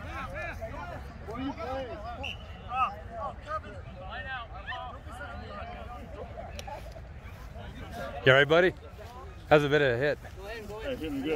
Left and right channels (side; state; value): both; identical; correlation 1.00